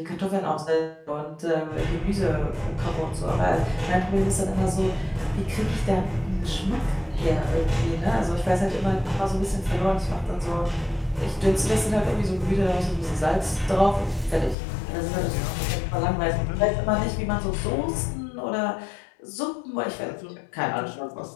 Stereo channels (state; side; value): drops out; right; at 14.6 s